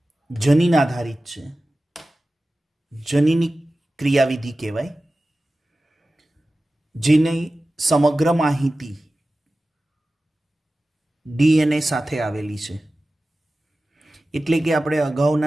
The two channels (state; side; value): normal; both; correlation 0.95